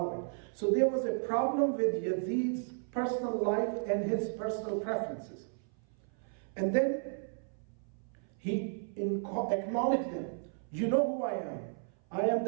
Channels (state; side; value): silent; left; 55 dB below the other